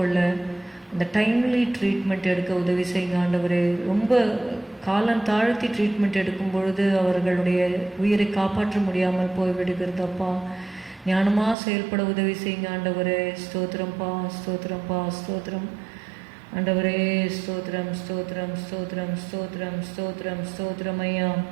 அந்த டைம்லி ட்ரீட்மெண்ட் எடுக்க உதவி செய்யுங்க ஆண்டவரே. ரொம்ப காலம் தாழ்த்தி ட்ரீட்மெண்ட் எடுக்கும் பொழுது அவர்களுடைய உயிரை காப்பாற்ற முடியாமல் போய்விடுகிறதப்பா. ஞானமாக செயல்பட உதவி செய்யுங்க ஆண்டவரே. ஸ்தோத்திரம்ப்பா ஸ்தோத்திரம்ப்பா ஸ்தோத்திரம் ஆண்டவரே. ஸ்தோத்திரம் ஸ்தோத்திரம் ஸ்தோத்திரம் ஸ்தோத்திரம் ஸ்தோத்திரம் ஸ்தோத்திரம் ஐயா.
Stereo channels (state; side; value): drops out; left; at 11.6 s